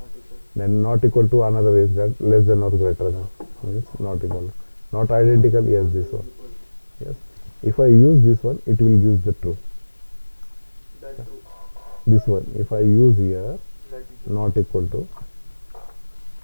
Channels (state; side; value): inverted; both; correlation -1.00